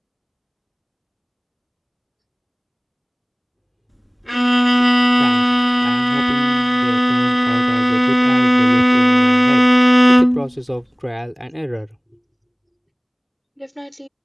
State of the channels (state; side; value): identical; both; correlation 1.00